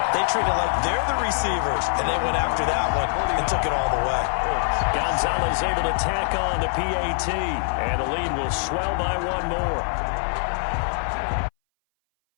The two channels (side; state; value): right; silent; 60 dB below the other